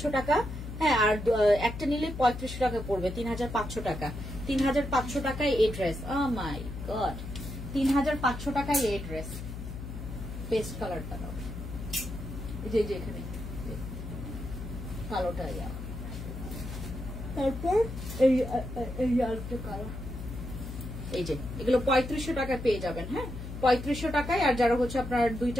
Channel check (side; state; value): left; noise; hum, 8 dB below the sound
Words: টাকা। হ্যাঁ, আর একটা নিলে 3500 টাকা পড়বে, 3500 টাকা। 3500 টাকায় এই ড্রেস। ও মাই গড, 3500 টাকায় এই ড্রেস। পেস্ট কালারটা দাও, যে এখানে কালোটা, তারপর এই আরেকটা কালার, এই যে এগুলো 3500 টাকায় পেয়ে যাবেন। হ্যাঁ, 3500 টাকায়। আর যারা হচ্ছে আপনার